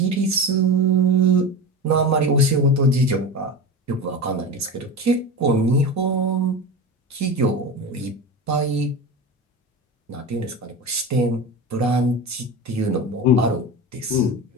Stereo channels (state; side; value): normal; both; correlation 0.26